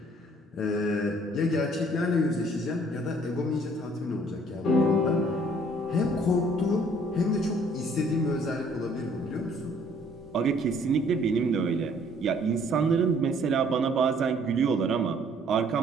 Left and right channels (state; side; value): normal; both; correlation 0.60